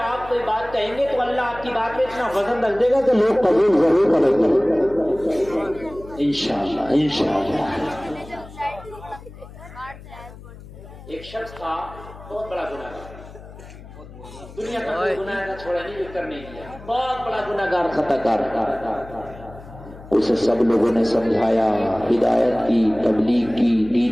آپ کوئی بات کہیں گے تو اللہ آپ کی بات میں اتنا وزن رکھ دے گا کہ لوگ قبول ضرور کریں گے انشاءاللہ انشاءاللہ. ایک شخص تھا بہت بڑا گناہگار. دنیا کا کوئی گناہ نہ چھوڑا نہیں، کر نہیں کیا. بہت بڑا گناہگار خطا کار. اسے سب لوگوں نے سمجھایا، ہدایت کی، تبلیغ کی،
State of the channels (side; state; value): left; noise; hum, 17 dB below the sound